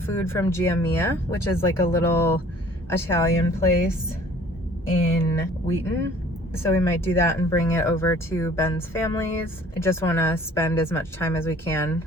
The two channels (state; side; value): normal; both; correlation 0.52